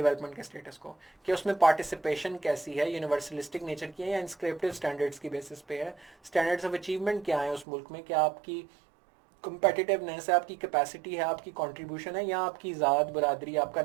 के स्टेटस को, कि उसमें पार्टिसिपेशन कैसी है, यूनिवर्सलिस्टिक नेचर की है या इंस्क्रिप्टिव स्टैंडर्ड्स की बेसिस पे है, स्टैंडर्ड्स ऑफ अचीवमेंट क्या है उस मुल्क में, क्या आपकी कंपेटिटिवनेस है, आपकी कैपेसिटी है, आपकी कंट्रीब्यूशन है, या आपकी ज़ात, बरादरी, आपका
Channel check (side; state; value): left; drops out; at 7.7 s